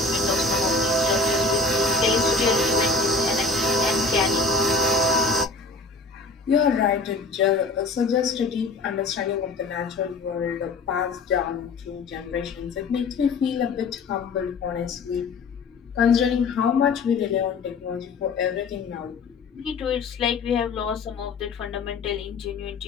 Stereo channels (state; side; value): quieter; right; 3.7 dB